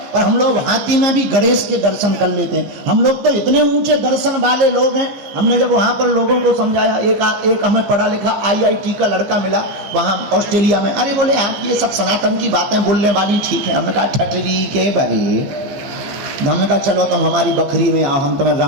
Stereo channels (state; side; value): late; left; 14 ms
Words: पर हम लोग हाथी में भी गणेश के दर्शन कर लेते हैं। हम लोग तो इतने ऊंचे दर्शन वाले लोग हैं। हमने जब वहां पर लोगों को समझाया, एक हमें पढ़ा लिखा IIT का लड़का मिला वहां ऑस्ट्रेलिया में। अरे बोले आप ये सब सनातन की बातें बोलने वाली ठीक है। हमने कहा ठटरी के बरे। हमने कहा चलो तुम हमारी बकरी में आओ, हम तुम्हें